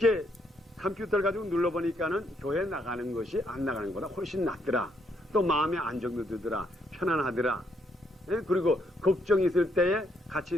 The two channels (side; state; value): both; normal; correlation 0.74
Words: 컴퓨터를 가지고 눌러보니까는 교회 나가는 것이 안 나가는 것보다 훨씬 낫더라. 또 마음에 안정도 들더라. 편안하더라. 그리고 걱정이 있을 때에 같이